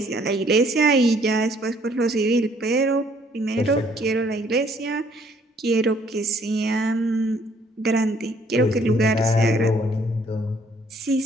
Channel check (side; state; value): both; normal; correlation 0.63